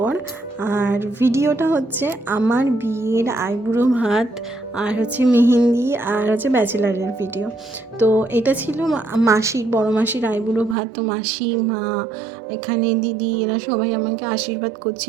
আর ভিডিওটা হচ্ছে আমার বিয়ের আইবুড়ো ভাত, আর হচ্ছে মেহেন্দি, আর হচ্ছে ব্যাচেলারের ভিডিও। তো এটা ছিল মাসির, বড় মাসির আইবুড়ো ভাত। তো মাসি, মা, এখানে দিদি, এরা সবাই আমাকে আশীর্বাদ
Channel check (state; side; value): drops out; left; at 10.8 s